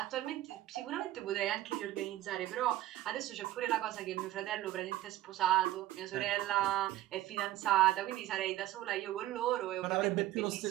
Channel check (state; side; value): quieter; left; 14.8 dB